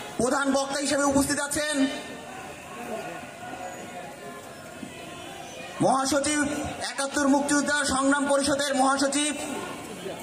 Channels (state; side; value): identical; both; correlation 1.00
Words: প্রধান বক্তা হিসেবে উপস্থিত আছেন মহাসচিব ৭১ মুক্তিযোদ্ধা সংগ্রাম পরিষদের মহাসচিব